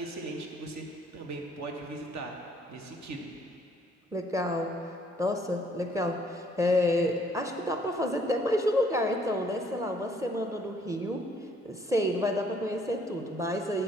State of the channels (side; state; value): both; normal; correlation 0.64